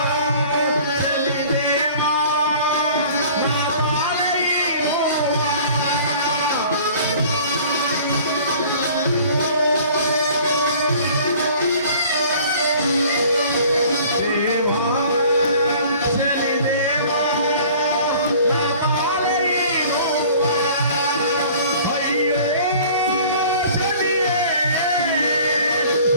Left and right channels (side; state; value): both; inverted; correlation -0.49